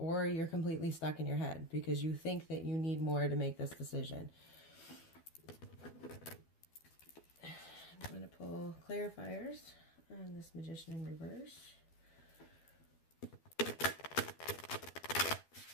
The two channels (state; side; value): late; right; 12 ms